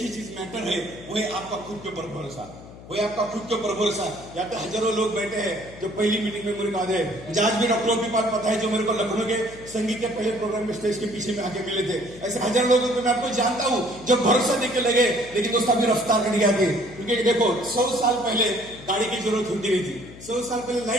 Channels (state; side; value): noise; left; hum, 17 dB below the sound